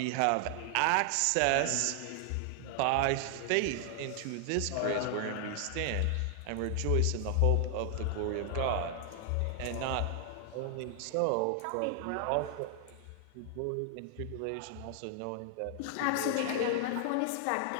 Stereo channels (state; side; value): different; both; correlation 0.00